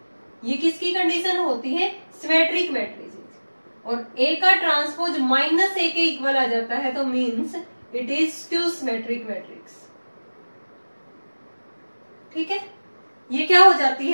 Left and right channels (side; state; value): both; inverted; correlation -1.00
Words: ये किसकी कंडीशन होती है, सिमेट्रिक मैट्रिसेस। और ए का ट्रांसपोज माइनस ए के इक्वल आ जाता है तो means it is skew symmetric matrix. ठीक है, ये क्या हो जाती